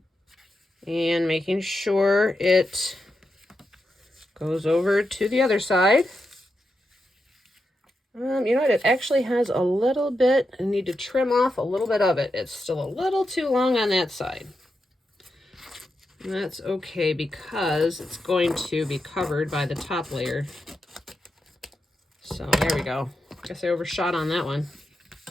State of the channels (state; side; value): normal; both; correlation 0.87